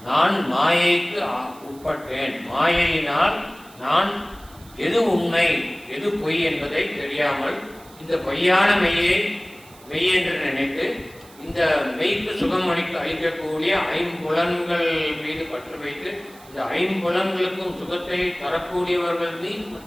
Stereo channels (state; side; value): noise; right; hiss, 24 dB below the sound